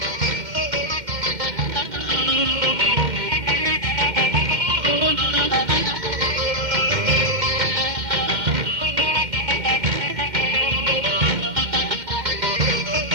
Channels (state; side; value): late; left; 2.1 ms